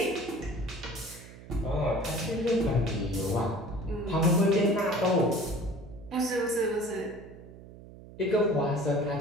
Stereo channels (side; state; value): right; noise; hum, 17 dB below the sound